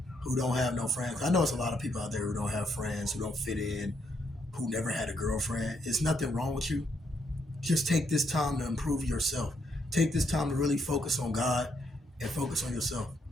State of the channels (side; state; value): both; normal; correlation 0.76